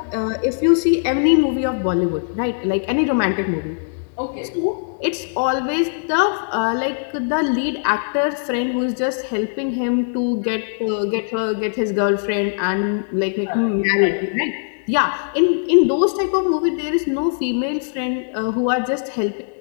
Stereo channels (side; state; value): right; silent; digital silence